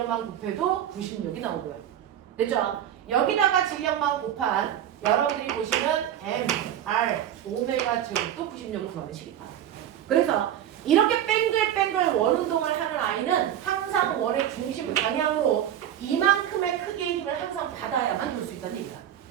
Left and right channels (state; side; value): quieter; left; 10.8 dB